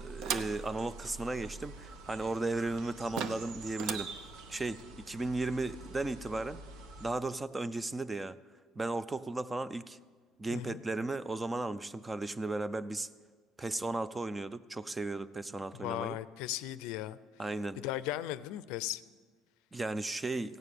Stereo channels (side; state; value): both; normal; correlation 0.79